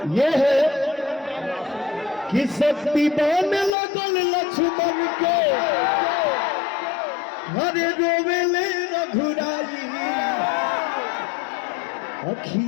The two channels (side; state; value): right; drops out; at 3.8 s